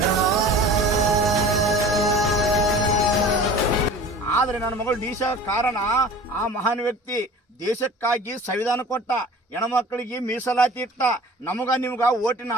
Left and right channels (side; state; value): both; normal; correlation 0.42